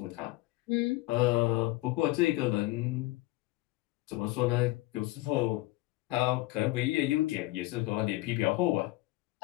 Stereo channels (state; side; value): quieter; right; 19.7 dB